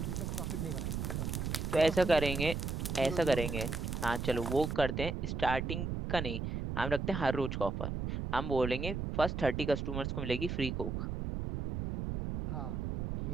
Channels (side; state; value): right; noise; rumble, 3 dB below the sound